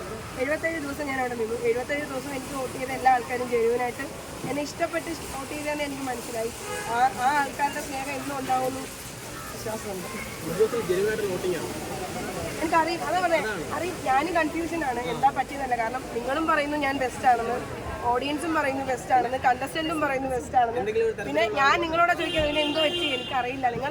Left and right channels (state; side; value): identical; both; correlation 1.00